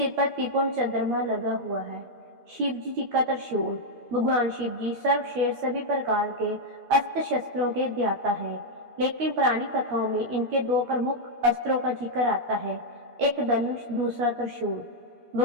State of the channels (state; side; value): late; left; 13 ms